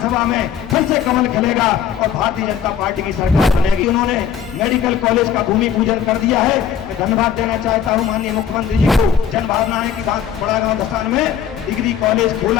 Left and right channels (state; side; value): quieter; right; 8.4 dB